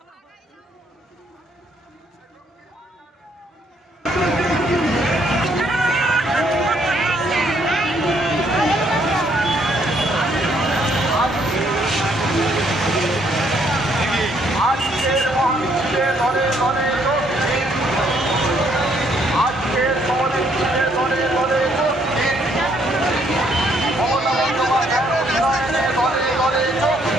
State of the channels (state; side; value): normal; both; correlation 0.69